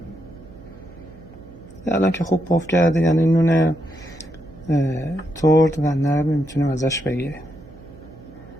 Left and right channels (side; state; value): right; noise; hum, 21 dB below the sound